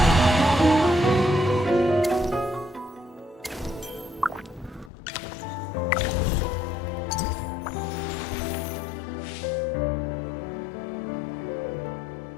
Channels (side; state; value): right; drops out; at 4.9 s